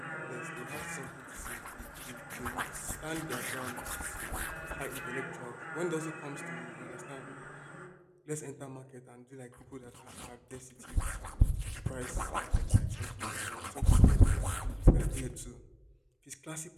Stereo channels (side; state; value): both; identical; correlation 1.00